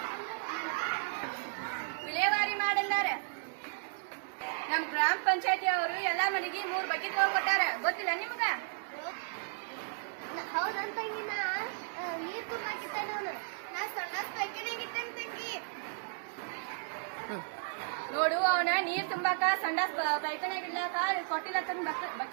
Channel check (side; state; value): left; silent; digital silence